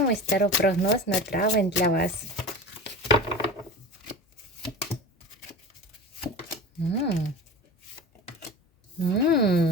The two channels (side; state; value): both; normal; correlation 0.33